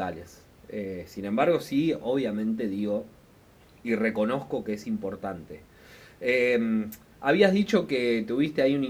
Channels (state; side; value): identical; both; correlation 1.00